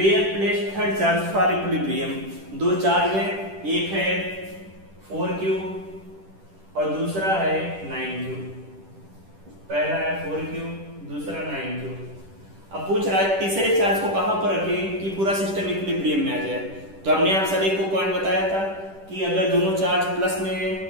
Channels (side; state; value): left; late; 10 ms